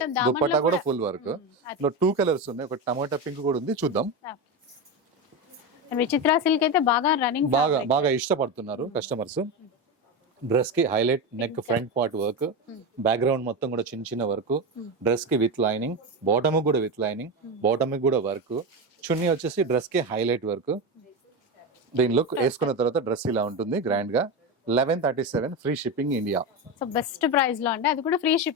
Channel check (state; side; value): normal; both; correlation 0.17